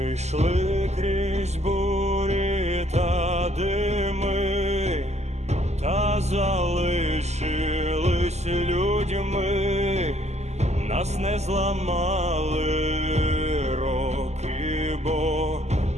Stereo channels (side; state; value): left; late; 0.33 ms